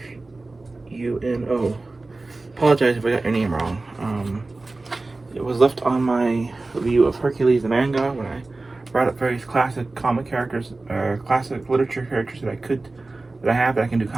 Apologize if I got your name wrong. It was left on my review of Hercules the manga when I brought up various classic comic characters, classic literature characters that I have that I can do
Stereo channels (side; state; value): left; quieter; 3.3 dB